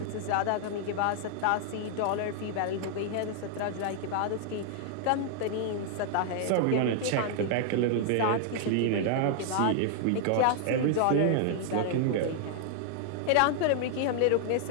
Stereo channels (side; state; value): both; different; correlation 0.00